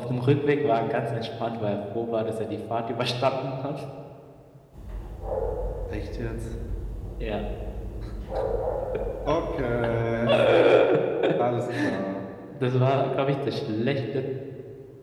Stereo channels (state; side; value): identical; both; correlation 1.00